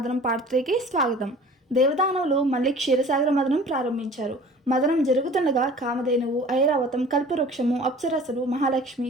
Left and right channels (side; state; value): both; normal; correlation 0.45